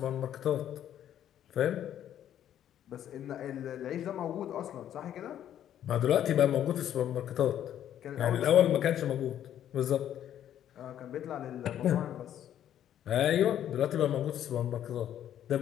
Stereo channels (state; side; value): quieter; right; 10.7 dB